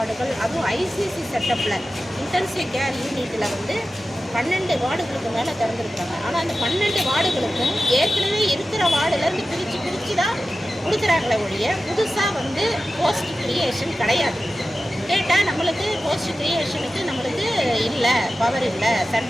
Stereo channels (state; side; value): normal; both; correlation 0.94